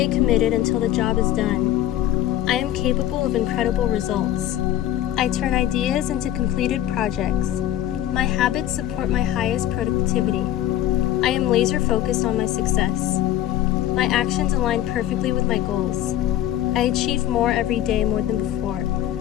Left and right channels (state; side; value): quieter; right; 12.7 dB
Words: committed until the job is done. I am capable of incredible results. I turn ideas into completed projects. My habits support my highest productivity. I am laser focused on my success. My actions align perfectly with my goals. I achieve more every day more than before.